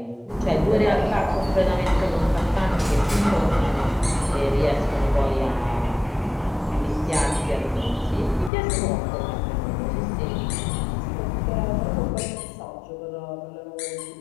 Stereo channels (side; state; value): right; drops out; at 8.5 s